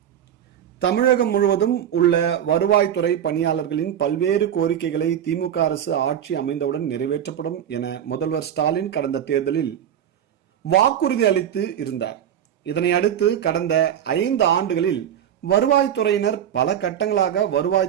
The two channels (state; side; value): quieter; left; 9.9 dB